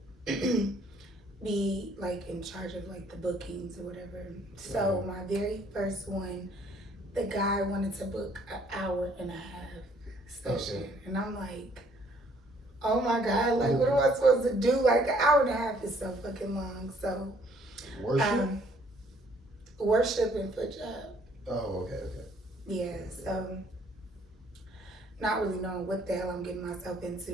be like in charge of like the bookings or whatever. So my very first one, the guy wanted to book an hour and a half session. Okay. And I'm like, oh my God, like what am I supposed to do? Like an hour and a half is so fucking long. So worship? Worship and foot job. Oh, okay. Yeah, so not really knowing what the hell I'm getting myself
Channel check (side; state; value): both; normal; correlation 0.62